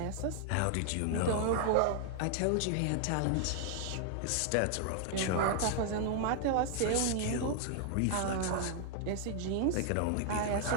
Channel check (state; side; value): different; both; correlation 0.00